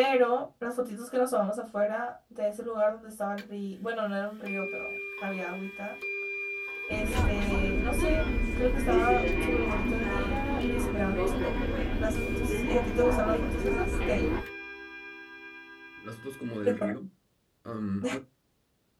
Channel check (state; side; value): identical; both; correlation 1.00